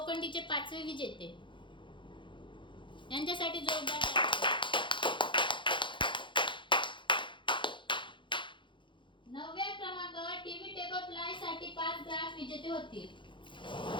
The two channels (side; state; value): right; late; 0.23 ms